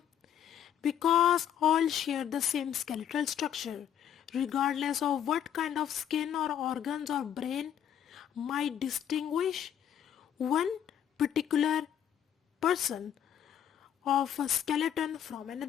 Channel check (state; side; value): quieter; right; 9.7 dB